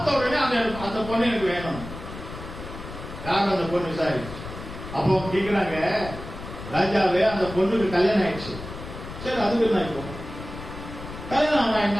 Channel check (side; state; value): left; noise; rumble, 11 dB below the sound